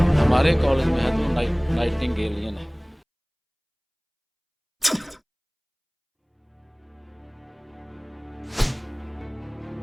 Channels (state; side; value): identical; both; correlation 1.00